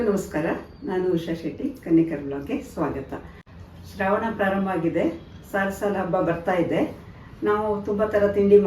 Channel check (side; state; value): both; identical; correlation 1.00